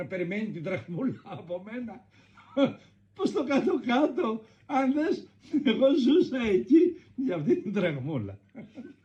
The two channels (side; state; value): both; identical; correlation 1.00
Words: περιμένει την δραχμούλα από μένα. Πως το κάτω-κάτω, αν δες, εγώ ζούσα εκεί για αυτή την δραχμούλα.